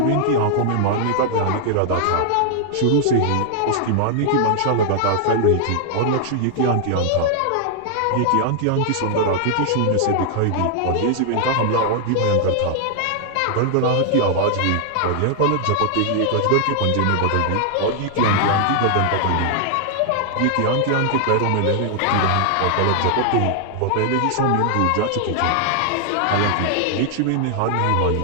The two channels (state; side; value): different; both; correlation 0.00